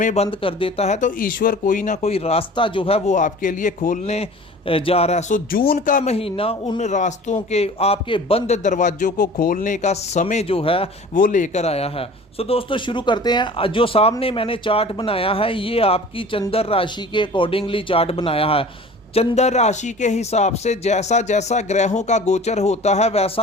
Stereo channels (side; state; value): both; normal; correlation 0.43